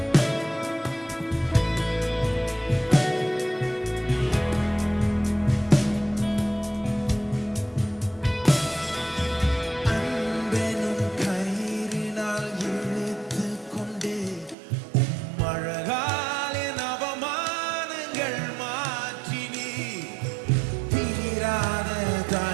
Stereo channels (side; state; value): left; drops out; at 14.6 s